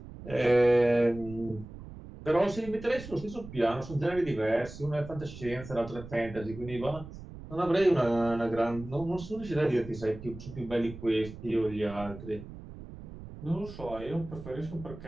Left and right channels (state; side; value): noise; right; rumble, 14 dB below the sound